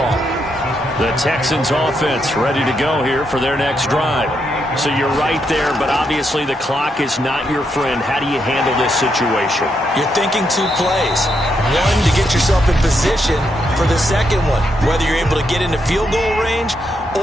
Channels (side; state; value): both; normal; correlation 0.80